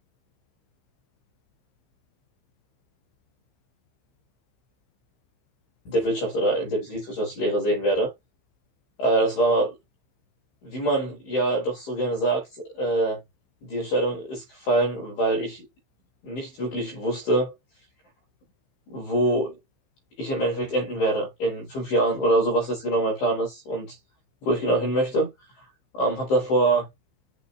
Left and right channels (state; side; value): late; right; 15 ms